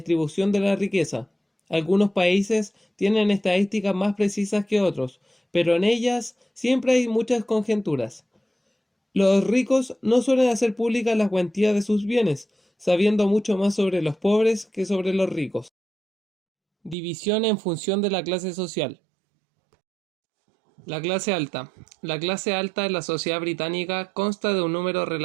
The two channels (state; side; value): drops out; left; at 16.9 s